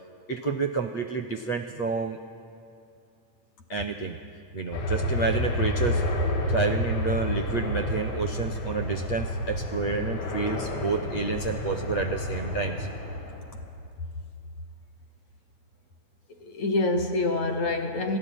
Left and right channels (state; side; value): late; right; 8.4 ms